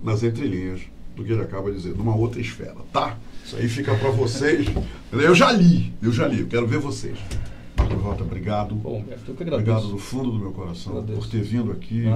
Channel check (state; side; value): identical; both; correlation 1.00